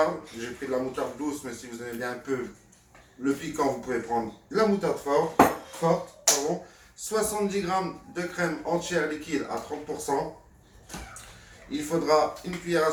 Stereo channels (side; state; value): both; identical; correlation 1.00